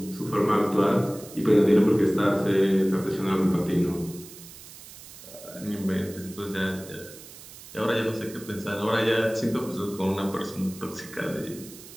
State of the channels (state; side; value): noise; right; hiss, 17 dB below the sound